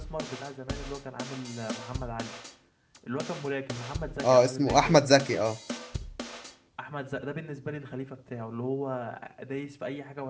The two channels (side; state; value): both; identical; correlation 1.00